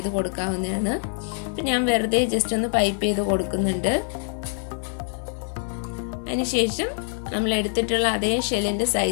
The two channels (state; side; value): silent; right; 58 dB below the other